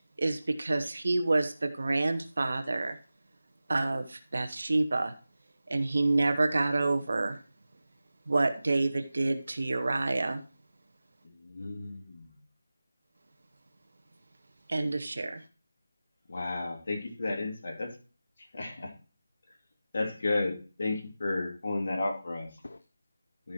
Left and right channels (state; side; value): inverted; both; correlation -0.95